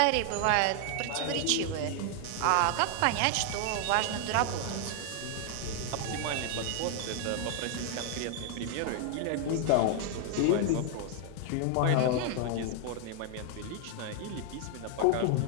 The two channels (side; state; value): both; different; correlation 0.00